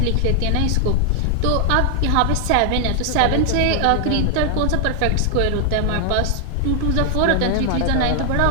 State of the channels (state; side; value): different; both; correlation 0.00